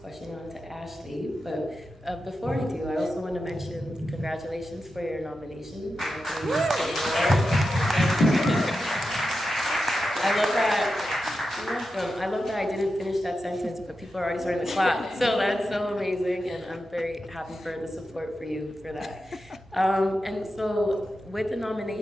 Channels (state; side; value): normal; both; correlation 0.90